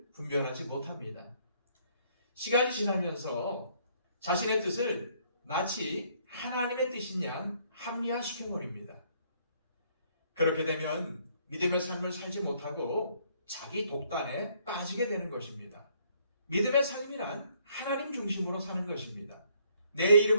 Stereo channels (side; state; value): both; inverted; correlation -0.66